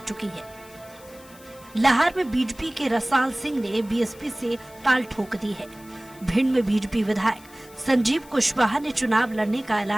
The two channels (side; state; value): left; noise; hiss, 23 dB below the sound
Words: चुकी है। लाहौर में बीजेपी के रसाल सिंह ने बीएसपी से ताल ठोक दी है। भिंड में बीजेपी विधायक संजीव कुशवाहा ने चुनाव लड़ने का